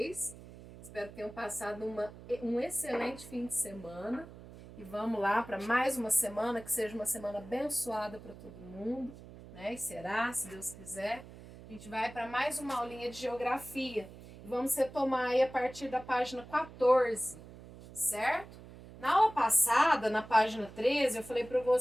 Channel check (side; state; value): right; noise; hum, 17 dB below the sound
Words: Espero que tenham passado um excelente fim de semana. E vamos lá para mais uma semana, que seja uma semana abençoada para todo mundo, né? E será, se Deus quiser. A gente vai para mais uma aulinha de geografia. E vamos retomar aí a partir da página 14, certo? Na aula passada, na página 13, eu falei para